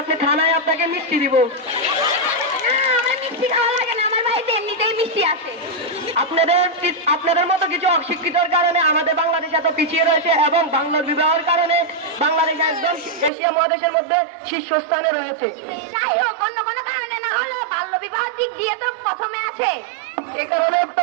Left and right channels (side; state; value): left; drops out; at 13.3 s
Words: আপনি থানায়, আপনাকে মিষ্টি দিব। না আমার মিষ্টি খাওয়া লাগে না, আমার বাড়িতে এমনিতেই মিষ্টি আছে। আপনাদের মতো কিছু অশিক্ষিতর কারণে আমাদের বাংলাদেশ এত পিছিয়ে রয়েছে এবং বাল্য বিবাহের কারণে বাংলাদেশ একদম এশিয়া মহাদেশের মধ্যে শীর্ষস্থানে রয়েছে। যাই হোক, অন্য কোনো কারণে না হলে বাল্য বিবাহের দিক দিয়ে তো প্রথমে আছে। এ কারণে তো